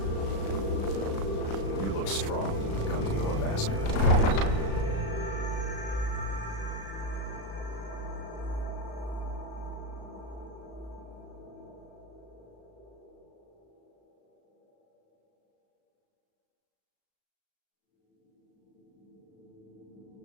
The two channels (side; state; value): right; late; 36 ms